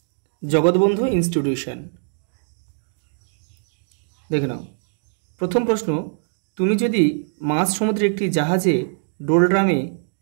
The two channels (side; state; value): left; silent; digital silence